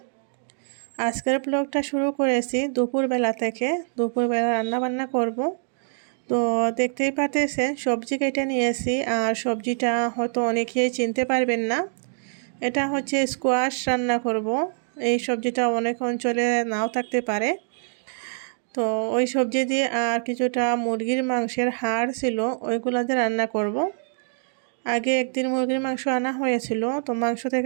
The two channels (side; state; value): left; silent; digital silence